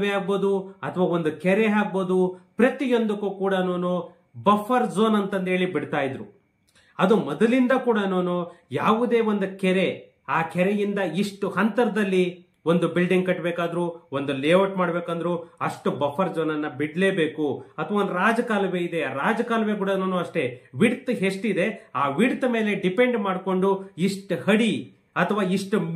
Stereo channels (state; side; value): identical; both; correlation 1.00